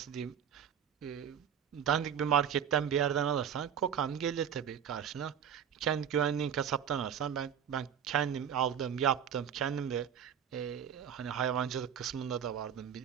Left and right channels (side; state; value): left; quieter; 8.5 dB